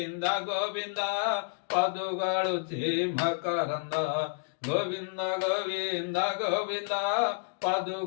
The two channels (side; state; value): right; silent; digital silence